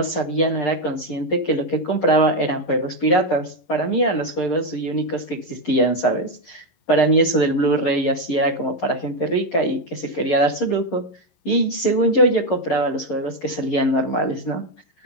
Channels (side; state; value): right; late; 11 ms